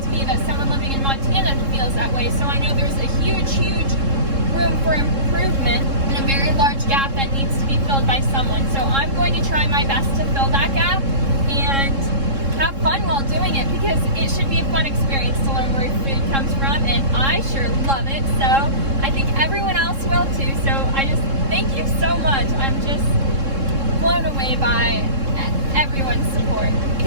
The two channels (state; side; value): late; left; 3.7 ms